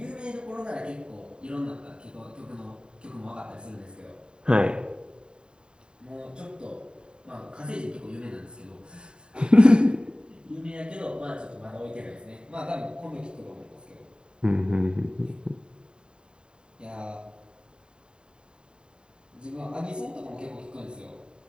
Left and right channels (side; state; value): left; late; 0.049 ms